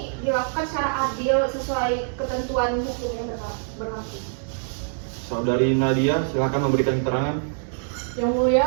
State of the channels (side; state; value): left; silent; digital silence